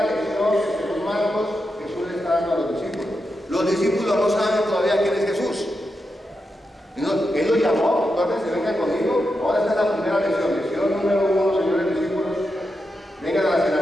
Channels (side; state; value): both; normal; correlation 0.87